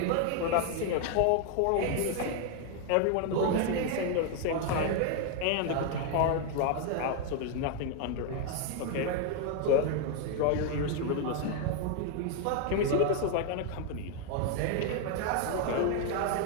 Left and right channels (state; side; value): different; both; correlation 0.00